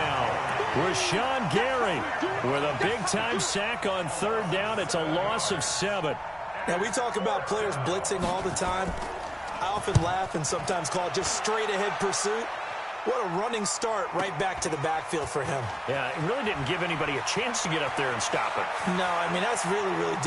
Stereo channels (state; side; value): identical; both; correlation 1.00